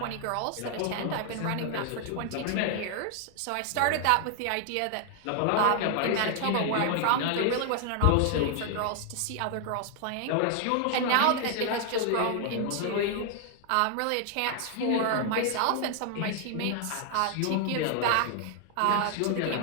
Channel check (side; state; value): both; different; correlation 0.00